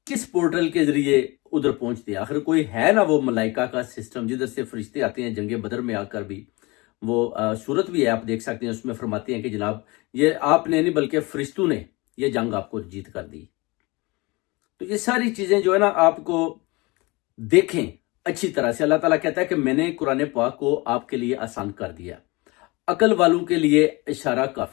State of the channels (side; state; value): right; quieter; 24.6 dB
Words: کس پورٹل کے ذریعے ادھر پہنچتے ہیں۔ آخر کوئی ہے نا وہ ملائکہ کا سسٹم جدھر سے فرشتے آتے ہیں۔ جنگ بدر میں آ کر بھی وہ صورت بھی ہے، آپ دیکھ سکتے ہیں، اس میں فرماتے ہیں کہ جناب یہ آپ نے نہیں بلکہ فرشتوں نے یہ جنگ آپ کو جیت کر دی۔ تو یہ ساری چیزیں جو ہے نا آپ کو دیکھیں اچھی طرح سے۔ اللہ تعالیٰ کہتا ہے کہ میں نے قرآن پاک کو آپ کے لیے آسان کر دیا، عقل والوں کے لیے اشارہ